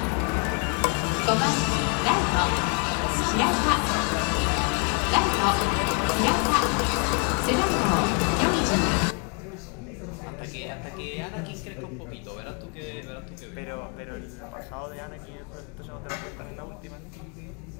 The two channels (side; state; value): right; quieter; 37.8 dB